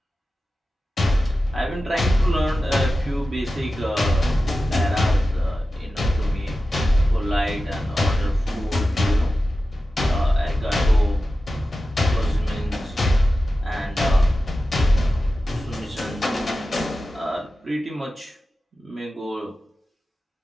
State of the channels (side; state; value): both; normal; correlation 0.93